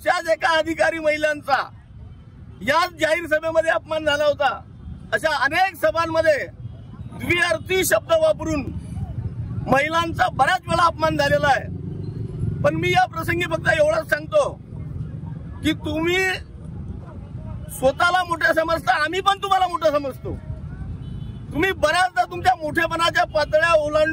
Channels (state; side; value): identical; both; correlation 1.00